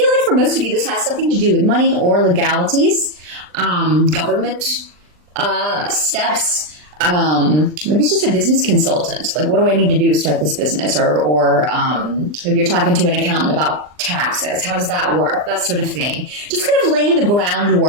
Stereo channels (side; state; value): left; late; 39 ms